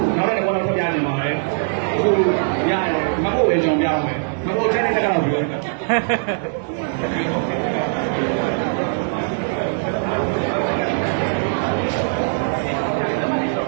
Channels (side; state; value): left; silent; 59 dB below the other